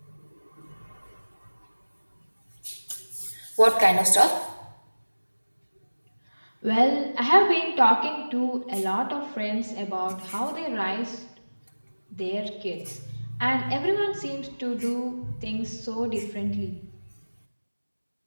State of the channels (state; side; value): inverted; both; correlation -1.00